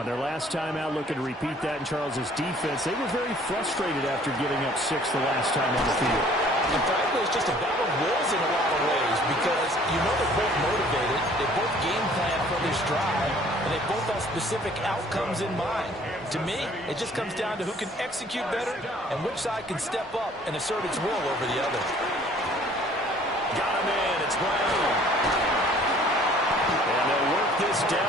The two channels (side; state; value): both; normal; correlation 0.55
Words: their last time out, looking to repeat that in Charles's defense. They were very frustrated after giving up 6 the last time on the field. And frankly, it's just a battle of wills in a lot of ways because you know they're both motivated, they both game plan for this drive, and they both have specific outcomes in mind. To me, it just comes down to who can execute better and which side can step up and assert its will over the other. Got him in. It's Brown. And they'll work this